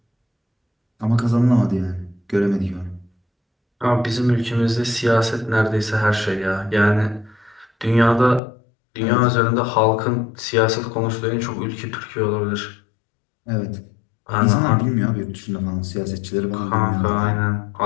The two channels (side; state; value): right; drops out; at 8.4 s